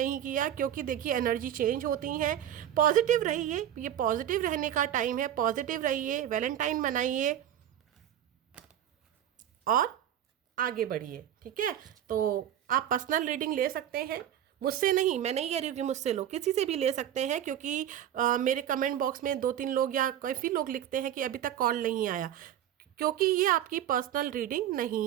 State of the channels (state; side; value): quieter; left; 10.9 dB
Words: किया, क्योंकि देखिए एनर्जी चेंज होती हैं। पॉजिटिव रहिए, ये पॉजिटिव रहने का टाइम है, पॉजिटिव रहिए, वैलेंटाइन मनाइए और आगे बढ़िए। ठीक है, तो आप पर्सनल रीडिंग ले सकते हैं, मुझसे नहीं, मैं नहीं कह रही हूँ कि मुझसे लो, किसी से भी ले सकते हैं, क्योंकि मेरे कमेंट बॉक्स में 2-3 लोग या काफ़ी लोग लिखते हैं कि अभी तक कॉल नहीं आया, क्योंकि ये आपकी पर्सनल रीडिंग